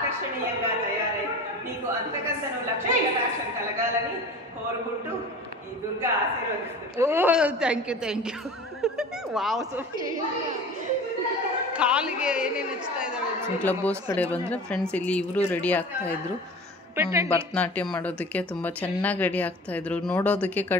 తయారై మీకు అంతకంతను లక్ష్మీ కటాక్షం కలగాలని కోరుకుంటూ ఈ దుర్గా ఆశీర్వదిస్తుంది. Thank you wow Sophie. ಕಾಲಿಗೆ ಏನೇನು ಹಚ್ತಾ ಇದ್ದಾಳೆ. ಕ್ಲಬ್ ಹೌಸ್ ಕಡೆ ಬಂದರೆ ಫ್ರೆಂಡ್ಸ್ ಇಲ್ಲಿ ಇವರು ರೆಡಿ ಆಗ್ತಾಯಿದ್ರು ಭರತನಾಟ್ಯ ಮಾಡೋದಕ್ಕೆ. ತುಂಬ ಚೆನ್ನಾಗಿ ರೆಡಿ ಆಗ್ತಾಯಿದ್ರು, ನೋಡೋದಕ್ಕೆ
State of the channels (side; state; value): both; normal; correlation 0.38